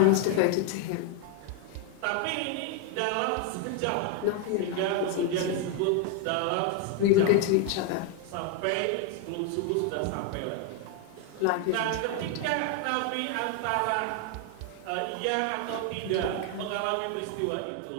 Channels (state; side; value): different; both; correlation 0.01